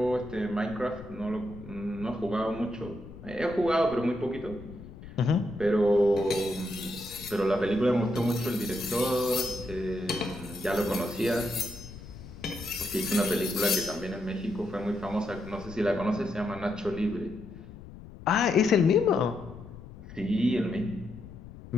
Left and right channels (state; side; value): noise; left; rumble, 15 dB below the sound